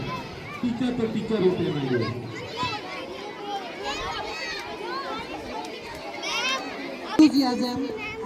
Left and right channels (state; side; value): identical; both; correlation 1.00